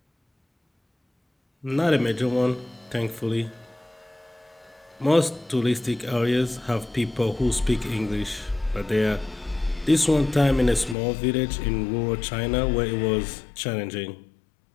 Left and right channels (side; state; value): right; drops out; at 11.0 s